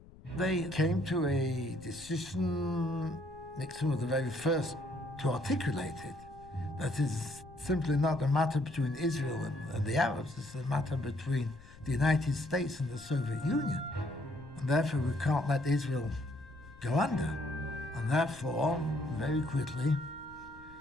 They came to a decision. Nixon was the very first to articulate it. That is simply not a matter between Israel and the Arabs. It's a matter between the United States and the Soviet Union. And therefore, we can't let Israel go under. And therefore, very quickly,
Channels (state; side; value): noise; left; rumble, 21 dB below the sound